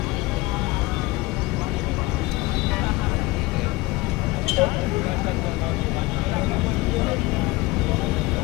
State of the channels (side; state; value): right; quieter; 21.1 dB